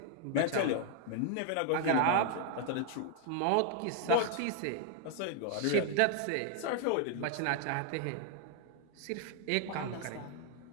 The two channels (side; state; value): both; different; correlation 0.00